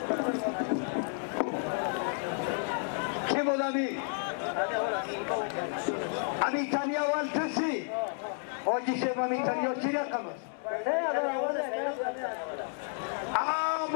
کی بود امی تنیا اول کسی آجی شیب امی تنیا چی رقم است؟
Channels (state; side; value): silent; right; 57 dB below the other